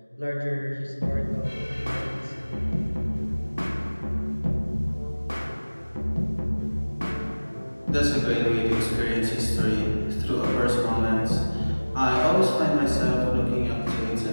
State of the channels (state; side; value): inverted; both; correlation -1.00